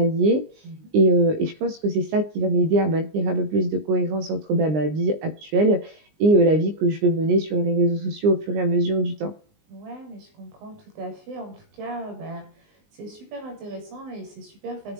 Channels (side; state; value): left; late; 19 ms